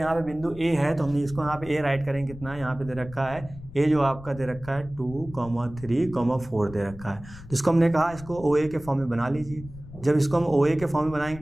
पे बिंदु ए है तो हमने इसको यहाँ पे ए राइट करेंगे, कितना यहाँ पे दे रखा है ए, जो आपका दे रखा है 2, 3, 4 दे रखा है। तो इसको हमने कहा इसको OA के फॉर्म में बना लीजिए। जब इसको हम OA के फॉर्म में बनाएंगे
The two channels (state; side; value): noise; left; rumble, 16 dB below the sound